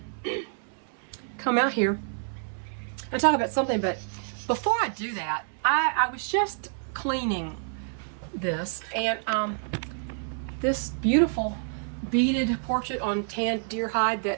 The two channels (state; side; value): silent; left; 59 dB below the other